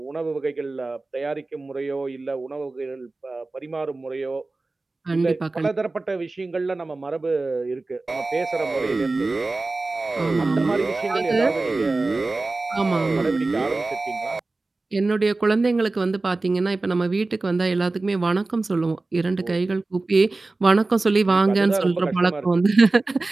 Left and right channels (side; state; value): left; quieter; 3.3 dB